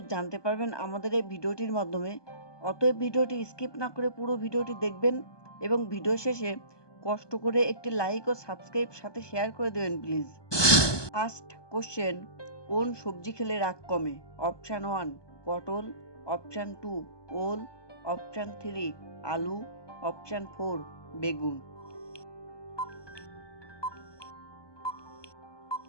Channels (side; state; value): right; late; 1.2 ms